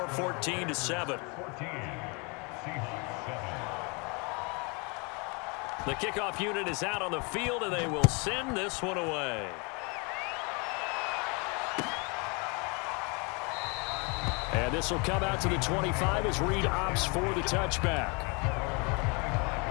14-7. The kickoff unit is out on the field, and they will send this one away. And this will come out to the 25 as Reed opts for the touchback.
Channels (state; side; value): quieter; right; 31.3 dB